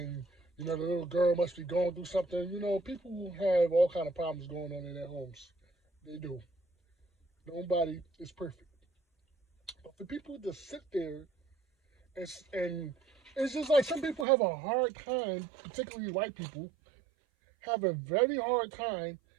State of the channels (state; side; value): drops out; left; at 14.2 s